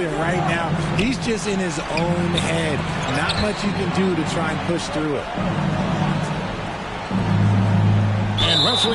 right now, he's just in his own head. Not much you can do to try and push through it. And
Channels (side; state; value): both; identical; correlation 1.00